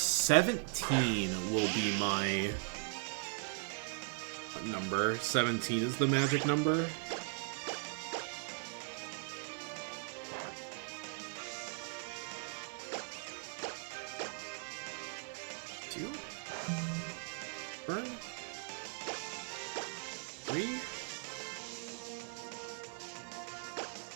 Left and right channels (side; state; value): left; silent; 52 dB below the other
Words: will be my number. 17 is the magic number.